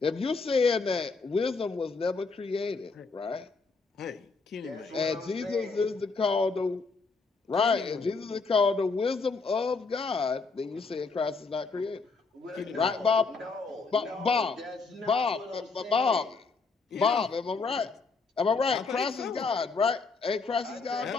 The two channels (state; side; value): quieter; right; 4.3 dB